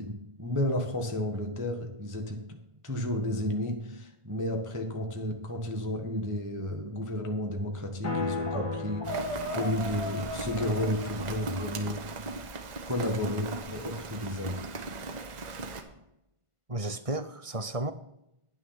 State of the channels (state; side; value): late; left; 1.5 ms